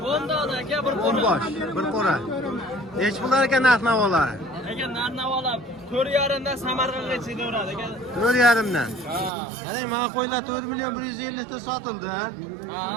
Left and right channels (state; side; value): drops out; left; at 9.3 s